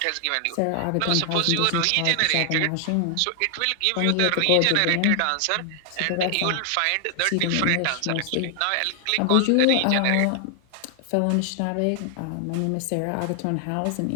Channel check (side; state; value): both; different; correlation 0.00